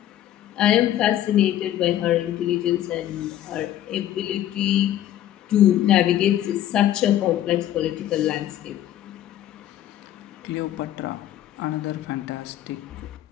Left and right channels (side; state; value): right; quieter; 12.2 dB